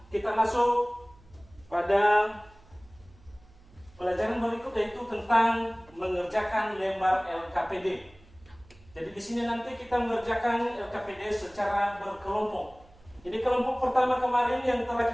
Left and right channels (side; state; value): right; noise; hum, 26 dB below the sound